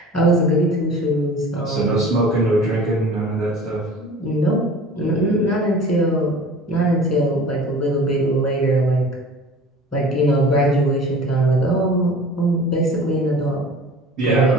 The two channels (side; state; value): both; normal; correlation 0.42